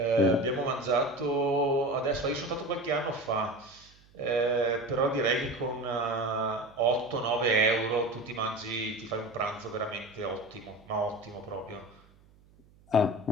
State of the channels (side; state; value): right; noise; hum, 28 dB below the sound